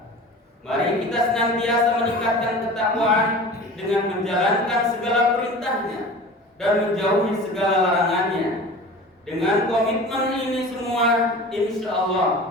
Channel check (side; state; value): both; normal; correlation 0.38